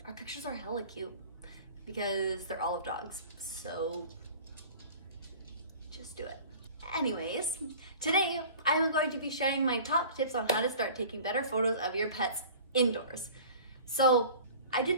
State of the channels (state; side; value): inverted; both; correlation -0.43